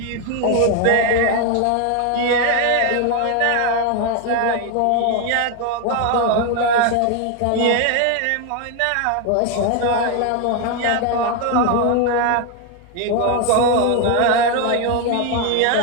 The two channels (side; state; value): both; different; correlation 0.01